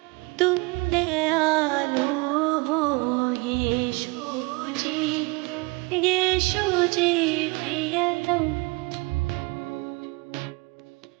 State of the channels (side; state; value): left; quieter; 26.3 dB